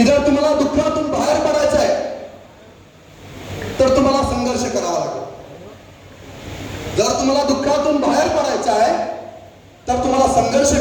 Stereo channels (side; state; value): both; identical; correlation 1.00